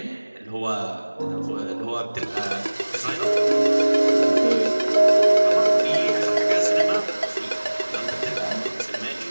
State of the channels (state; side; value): inverted; both; correlation -1.00